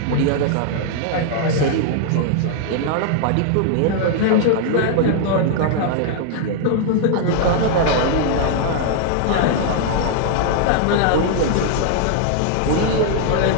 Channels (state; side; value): different; both; correlation 0.00